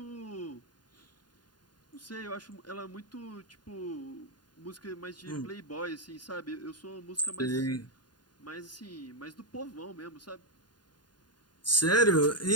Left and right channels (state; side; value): late; right; 0.70 ms